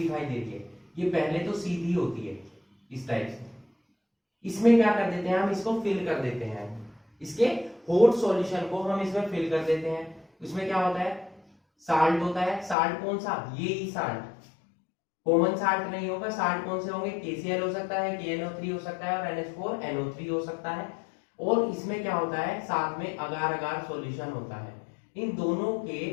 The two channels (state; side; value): drops out; right; at 12.8 s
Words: दे रही है, ये पहले तो सीधी होती है इस टाइप से, इसमें क्या कर देते हैं, हम इसको फिल कर देते हैं, इसके हॉट सॉल्यूशन को हम इसमें फिल कर देते हैं। इसमें क्या होता है, साल्ट होता है, साल्ट कौन सा, ये ही साल्ट, कॉमन साल्ट नहीं होगा, साल्ट कौन से होंगे, KCl हो सकता है, KNO3 हो सकता है, और NH4NO3 हो सकता है। और इसमें क्या होता है, साथ में अगार अगार सॉल्यूशन होता है। इन दोनों के